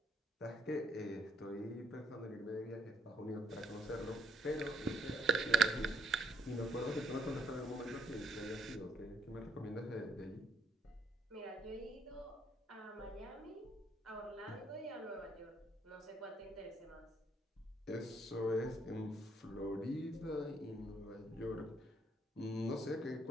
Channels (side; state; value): both; normal; correlation 0.71